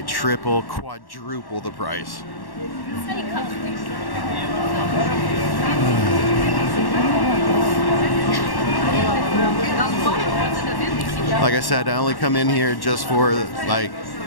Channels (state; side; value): late; right; 1.1 ms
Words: triple, quadruple the price. Like I said, I only come in here just for